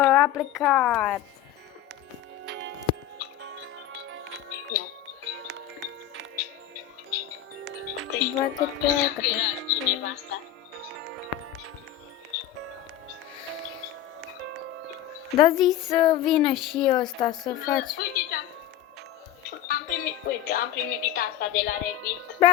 plecat. Bă, că pleacă. Cineva asta. Da, zi să vină și ăsta să faci. Uite, am primit asta de la Revit.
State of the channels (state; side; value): quieter; right; 12.1 dB